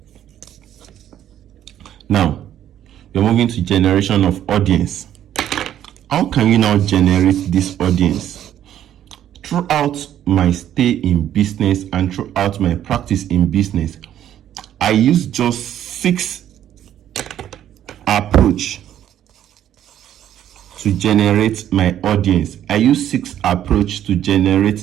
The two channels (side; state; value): left; quieter; 11.1 dB